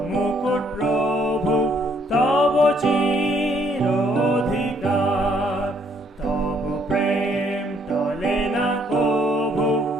মুকুট প্রভু তব চির অধিকার। তব প্রেম টলে না কভু,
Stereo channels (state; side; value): normal; both; correlation 0.67